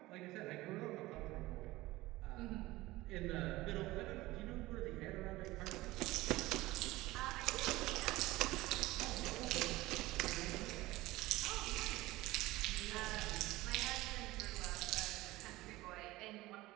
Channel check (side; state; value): left; quieter; 18.7 dB